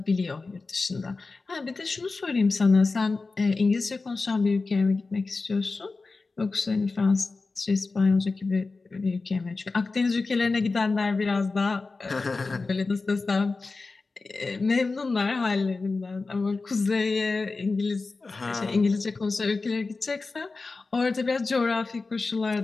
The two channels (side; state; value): right; quieter; 3.8 dB